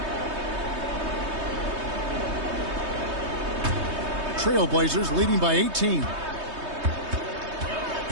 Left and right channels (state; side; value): late; left; 3.2 ms